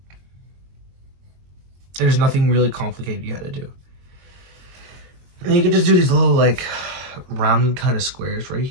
And there's nothing really complicated you gotta do. And you can just do these little like round kind of squares right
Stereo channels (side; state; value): left; late; 22 ms